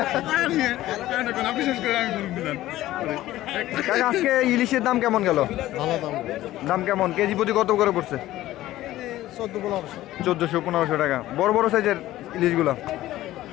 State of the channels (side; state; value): right; quieter; 15.2 dB